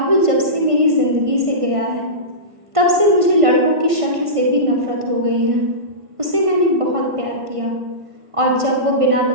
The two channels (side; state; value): left; late; 1.5 ms